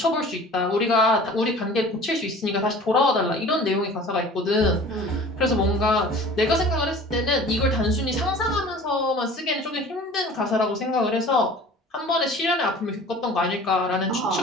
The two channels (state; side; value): normal; both; correlation 0.44